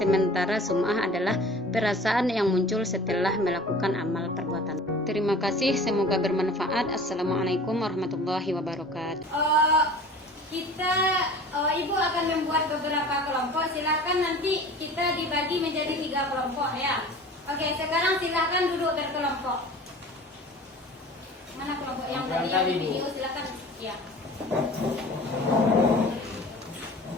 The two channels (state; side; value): normal; both; correlation 0.42